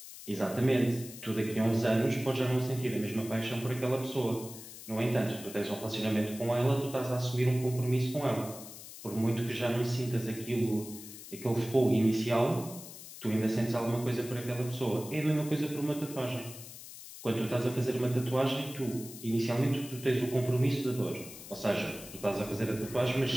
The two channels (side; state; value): left; noise; hiss, 14 dB below the sound